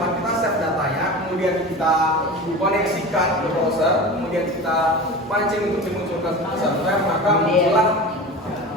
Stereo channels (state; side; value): normal; both; correlation 0.32